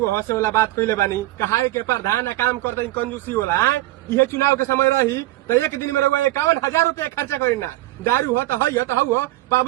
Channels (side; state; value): left; quieter; 16.8 dB